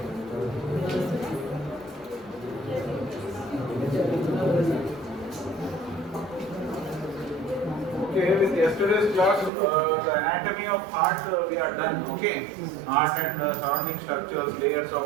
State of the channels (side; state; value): left; drops out; at 9.5 s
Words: Okay, with yesterday's class, the anatomy of heart we are done. Okay, heart and surrounding structures, layers